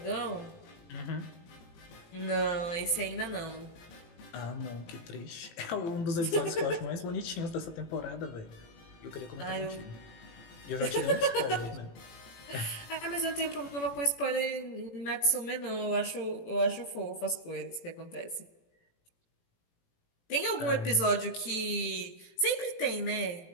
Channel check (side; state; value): right; late; 18 ms